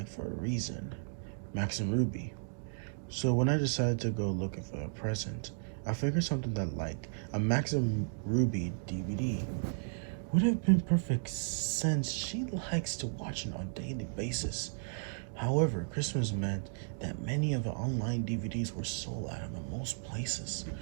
for a reason, Max and Ruby. So when I decided to go looking for a present, I figured something that like a Max and Ruby DVD would have been perfect since she likes to watch it on a daily basis. However, Christmas meant that many of the online DVDs were sold out of most places.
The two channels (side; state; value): left; silent; digital silence